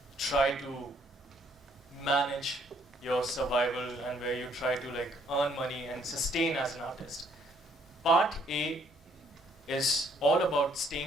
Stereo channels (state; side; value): normal; both; correlation 0.66